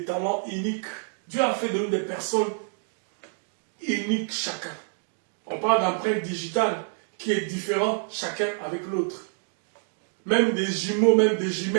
talents uniques. Dieu a fait de nous des personnes uniques chacun. On parle d'empreinte digitale qui est différente chacun avec l'autre. Même des jumeaux, même des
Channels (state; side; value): silent; left; 56 dB below the other